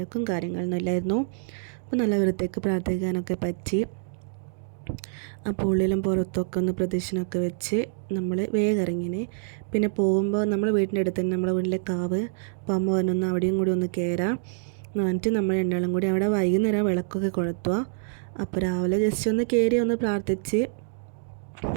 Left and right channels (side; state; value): left; silent; digital silence